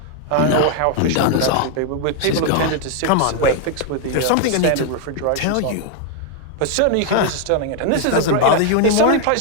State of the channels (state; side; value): different; both; correlation 0.00